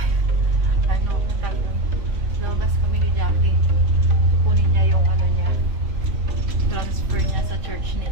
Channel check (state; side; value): late; left; 3.7 ms